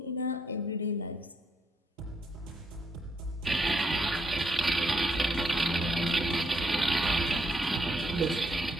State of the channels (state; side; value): normal; both; correlation 0.74